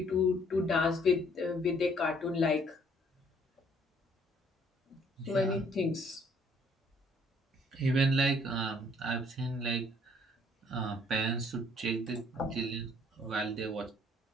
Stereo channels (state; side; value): normal; both; correlation 0.62